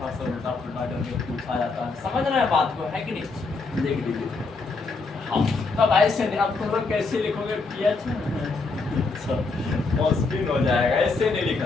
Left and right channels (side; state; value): right; quieter; 4.0 dB